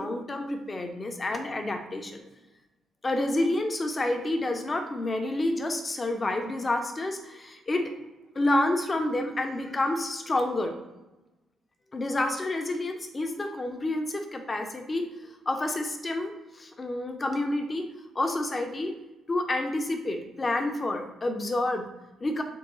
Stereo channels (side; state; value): both; normal; correlation 0.90